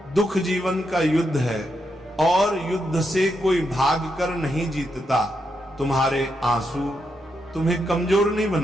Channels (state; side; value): normal; both; correlation 0.82